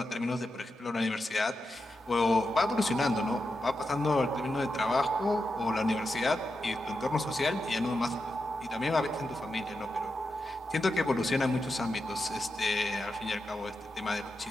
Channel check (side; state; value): both; normal; correlation 0.88